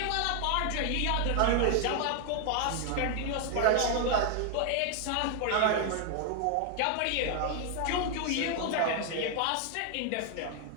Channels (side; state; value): both; different; correlation 0.00